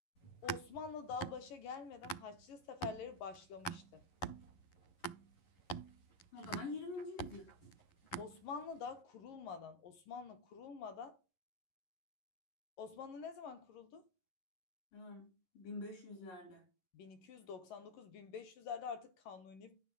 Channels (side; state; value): right; late; 11 ms